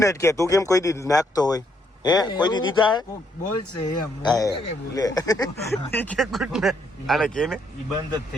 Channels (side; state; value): both; normal; correlation 0.73